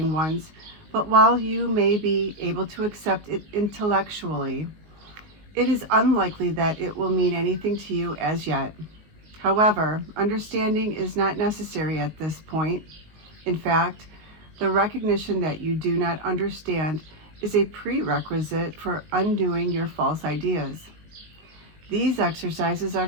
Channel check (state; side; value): late; left; 19 ms